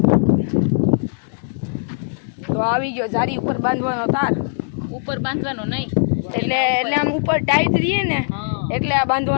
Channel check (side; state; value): right; silent; digital silence